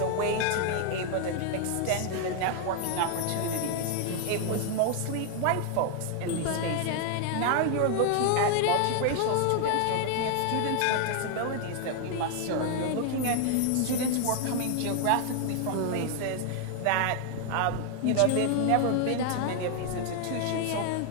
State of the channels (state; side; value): different; both; correlation 0.00